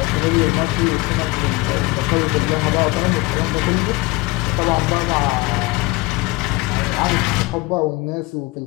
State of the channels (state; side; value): quieter; right; 21.6 dB